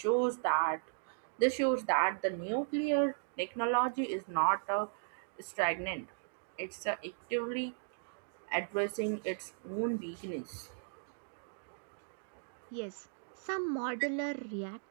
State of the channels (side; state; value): left; silent; digital silence